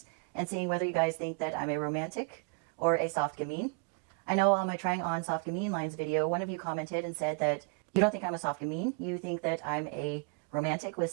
and seeing whether you guys think that I'm a romantic or a soft gamine. I know on my trying on soft gamine lines video, one of you commented and said that you don't think I'm a soft gamine, you think that I'm a romantic with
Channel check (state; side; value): quieter; left; 36.7 dB